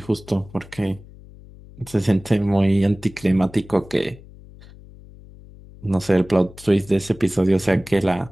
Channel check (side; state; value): left; noise; hum, 20 dB below the sound